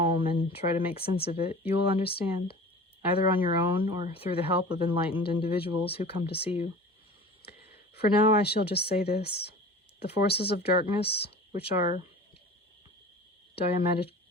and try to make sense of it, you will understand, either on your own or through the help of enlightened individuals who come to see you. For now I shall just say this: the forces of darkness, which are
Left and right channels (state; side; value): normal; both; correlation 0.39